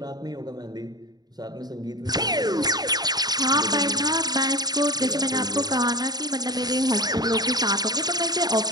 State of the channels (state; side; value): late; left; 0.19 ms